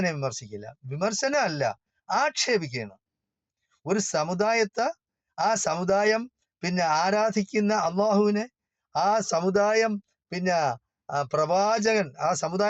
വിമർശിക്കില്ല. വിമർശനമല്ല, ആക്ഷേപിക്കുകയാണ്. ഒരു സമുദായത്തെ, ആ സമുദായം ആരാധിക്കുന്ന അള്ളാഹുവിനെ, ആ സമുദായം പ്രവാചകൻ, ആ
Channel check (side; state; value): both; identical; correlation 1.00